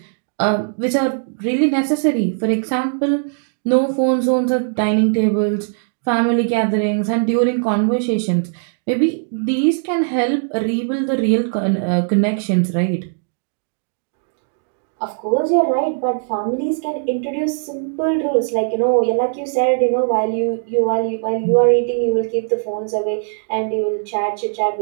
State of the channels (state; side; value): silent; left; digital silence